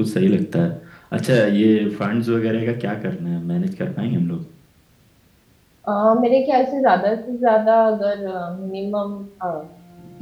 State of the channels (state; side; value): identical; both; correlation 1.00